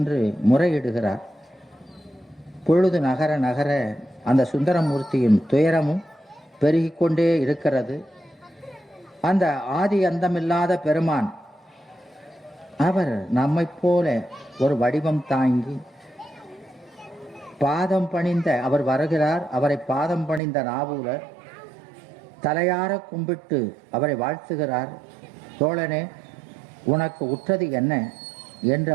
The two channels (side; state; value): left; drops out; at 20.4 s